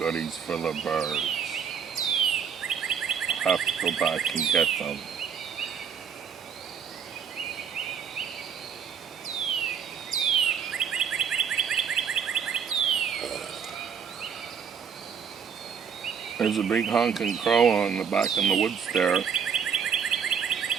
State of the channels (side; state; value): left; quieter; 7.2 dB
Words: for the birds. I'll have to go back and get them. There's a big honking crow on the back in the woods there.